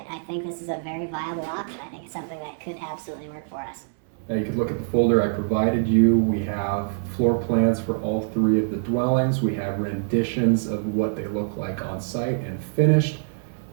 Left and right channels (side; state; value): left; silent; digital silence